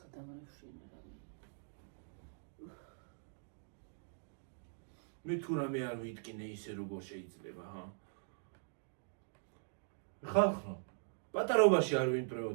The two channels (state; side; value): silent; left; digital silence